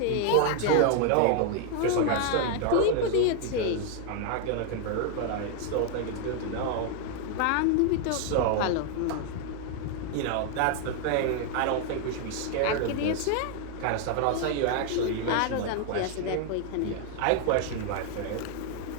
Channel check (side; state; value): both; different; correlation 0.00